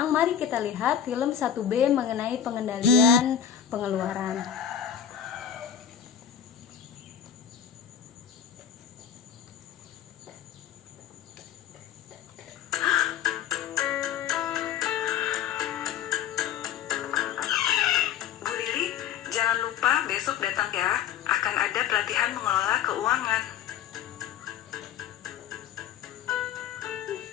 mari kita lihat film 1B mengenai pengendalian pengeluaran. Jangan lupa besok datang ya, akan ada pelatihan mengelola keuangan.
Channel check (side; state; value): right; quieter; 9.1 dB